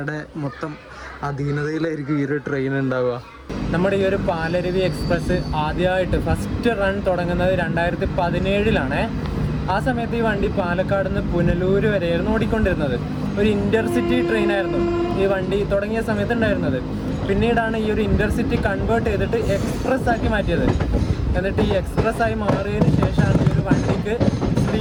മൊത്തം അധീനതയിലായിരിക്കും ഈ ഒരു ട്രെയിൻ ഉണ്ടാവുക. നമ്മുടെ ഈ ഒരു പാലരുവി എക്സ്പ്രസ് ആദ്യമായിട്ട് ഫസ്റ്റ് റൺ തുടങ്ങുന്നത് 2017 ആ സമയത്ത് ഈ വണ്ടി പാലക്കാട് നിന്ന് പുനലൂർ വരെയായിരുന്നു ഓടിക്കൊണ്ടിരുന്നത്. ഒരു ഇൻ്റർസിറ്റി ട്രെയിനായിരുന്നു ഈ വണ്ടി തുടങ്ങിയ സമയത്ത് ഉണ്ടായിരുന്നത്. പിന്നീടാണ് ഈ ഒരു ഇൻ്റർസിറ്റി കൺവേർട്ട് ചെയ്തിട്ട് എക്സ്പ്രസ് ആക്കി മാറ്റിയത്. എന്നിട്ട് ഈ എക്സ്പ്രസ് ആയി മാറിയതിന് ശേഷമാണ് ഈ ഒരു വണ്ടിക്ക്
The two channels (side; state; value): both; identical; correlation 1.00